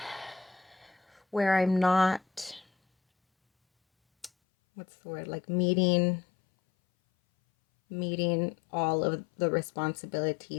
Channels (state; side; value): drops out; right; at 4.3 s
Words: where I'm not, what's the word, like meeting all of the